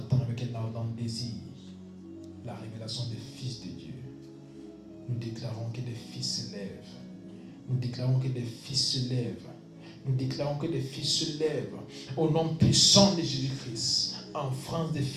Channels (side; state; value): both; identical; correlation 1.00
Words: avec un ardent désir la révélation des fils de Dieu. Nous déclarons que des fils se lèvent. Nous déclarons que des fils se lèvent. Nous déclarons que des fils se lèvent. Au nom puissant de Jésus-Christ. En France, des